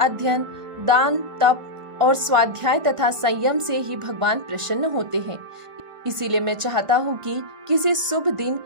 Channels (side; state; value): left; late; 1.4 ms